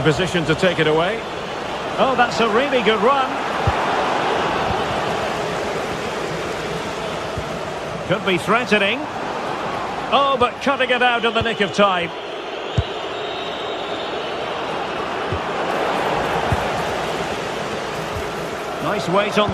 positioned to take it away. Oh, that's a really good run. Could be threatening. Oh, but cutting it out in the nick of time. Nice weight on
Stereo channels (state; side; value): identical; both; correlation 1.00